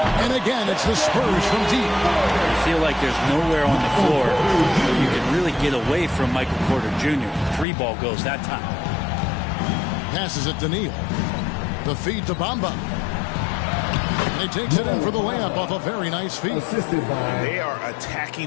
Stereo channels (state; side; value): drops out; right; at 7.7 s